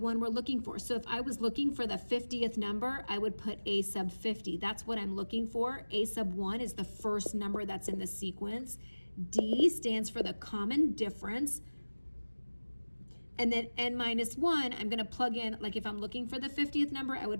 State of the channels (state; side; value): inverted; both; correlation -1.00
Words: we're looking for. So if I was looking for the 50th number, I would put a sub 50. That's what I'm looking for. A sub 1 is the first number that's in the sequence. D stands for the common difference. And then n minus 1, I'm gonna plug in, like if I'm looking for the 50th number, I